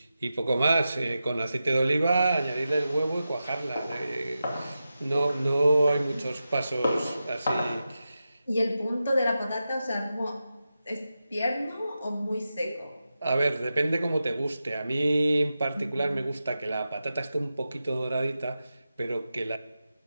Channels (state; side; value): inverted; both; correlation -0.91